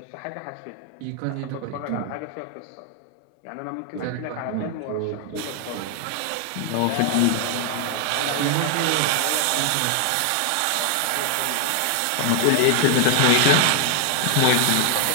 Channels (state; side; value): different; both; correlation 0.00